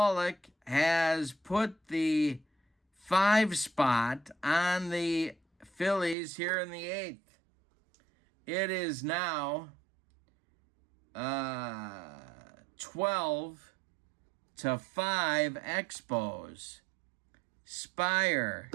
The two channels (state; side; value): drops out; left; at 6.2 s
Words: has put the 5 spot on the Phillies here in the 8th. It is now 12-5 Expos. Spire.